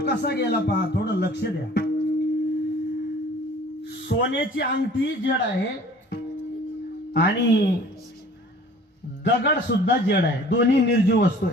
गेला पहा, थोडं लक्ष द्या. सोन्याची अंगठी जड आहे आणि दगड सुद्धा जड आहे, दोन्ही निर्जीव वस्तू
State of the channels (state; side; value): normal; both; correlation 0.49